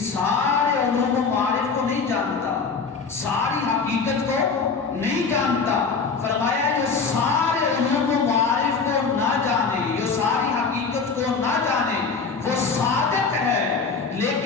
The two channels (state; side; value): quieter; right; 5.1 dB